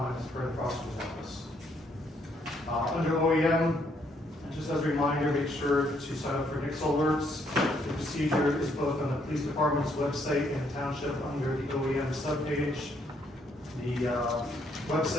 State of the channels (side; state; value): both; normal; correlation 0.71